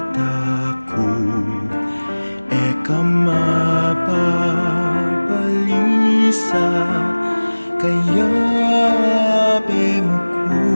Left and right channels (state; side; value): inverted; both; correlation -1.00